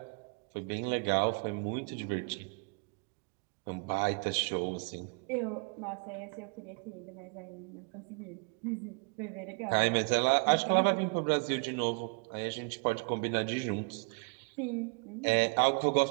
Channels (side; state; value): left; quieter; 35.0 dB